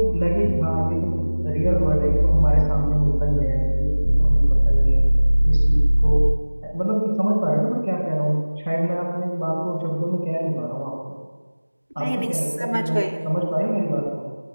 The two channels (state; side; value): inverted; both; correlation -1.00